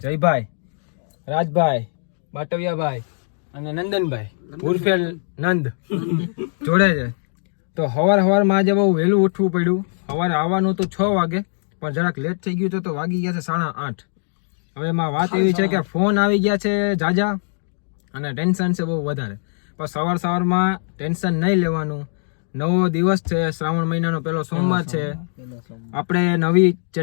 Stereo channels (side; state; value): right; silent; digital silence